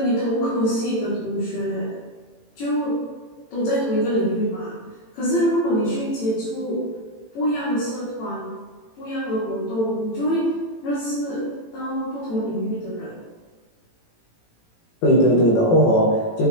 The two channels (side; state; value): right; late; 18 ms